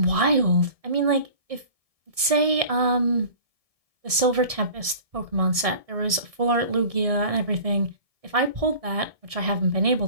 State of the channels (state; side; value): late; left; 1.7 ms